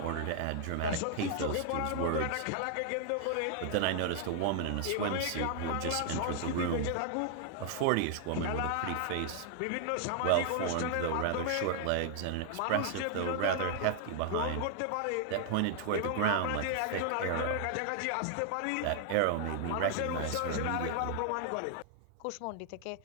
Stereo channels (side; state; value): both; different; correlation 0.00